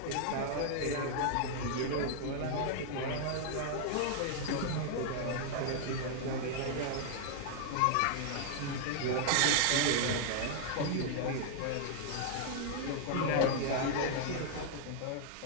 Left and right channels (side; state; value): both; different; correlation -0.01